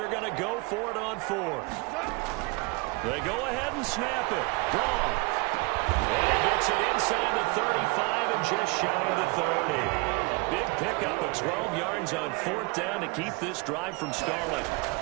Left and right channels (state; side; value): quieter; left; 28.0 dB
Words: going to go for it on 4th. They go ahead and snap it. Gone. And he gets it inside the 35 and just shy of the 30. A big pickup of 12 yards on 4th down to keep this drive from stalling.